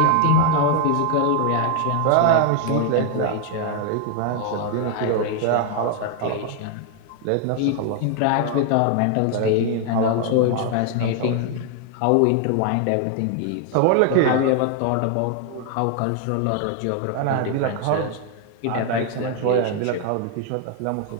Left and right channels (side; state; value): both; different; correlation 0.00